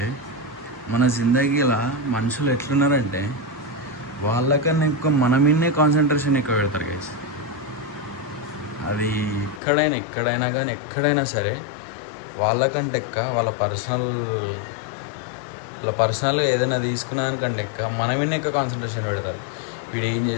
మన జిందగీలో మనుషులు ఎట్లున్నారంటే వాళ్ళకన్నా ఎక్కువ మన మీదనే కాన్సన్ట్రేషన్ ఎక్కువ పెడతారు గైస్. అది ఎక్కడైనా కానీ ఎక్కడైనా సరే వాళ్ళకంటే ఎక్క వాళ్ళ పర్సనల్ ఏదైనా తీసుకున్నానికంటే ఎక్క మన మీదనే ఎక్కువ కాన్సన్ట్రేషన్ పెడతారు. వీడు ఏం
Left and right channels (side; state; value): right; drops out; at 9.6 s